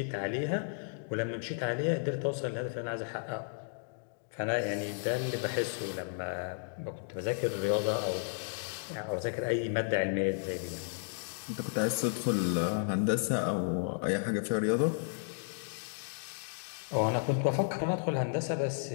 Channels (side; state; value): right; silent; digital silence